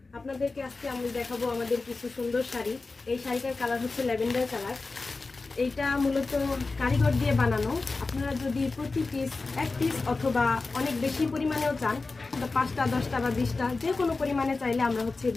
আপনাদেরকে আজকে আমি দেখাবো আমাদের কিছু সুন্দর শাড়ি। এই শাড়িটার কালার হচ্ছে ল্যাভেন্ডার কালার। এইটা মূলত কারিগর দিয়ে বানানো। আপনারা যদি প্রতি পিস এক পিস অথবা অনেক বেশি পরিমাণেও চান, 5টা 10টা বা 20টা যে কোনো পরিমাণে চাইলে আমরা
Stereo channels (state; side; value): quieter; right; 3.8 dB